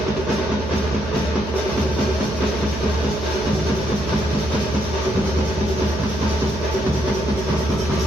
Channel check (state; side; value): noise; right; hum, 8 dB below the sound